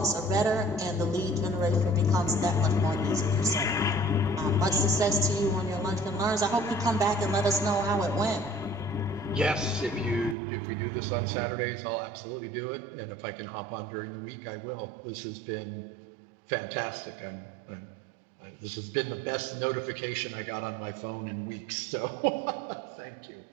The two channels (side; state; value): left; drops out; at 10.4 s